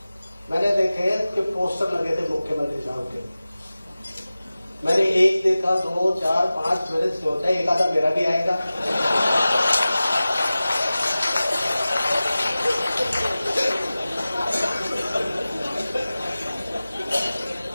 मैंने देखे कि पोस्टर लगे थे मुख्यमंत्री साहब के। मैंने एक देखा, 2, 4, 5, मेरे सोचा एक आधा मेरा भी आएगा।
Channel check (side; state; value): both; inverted; correlation -0.96